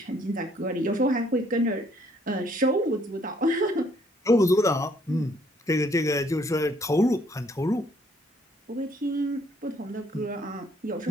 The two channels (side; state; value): both; normal; correlation 0.66